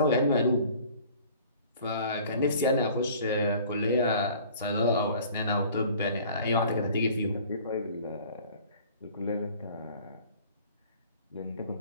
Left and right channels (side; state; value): both; inverted; correlation -0.50